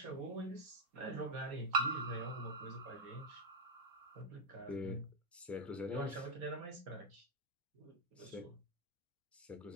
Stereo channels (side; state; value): both; normal; correlation 0.01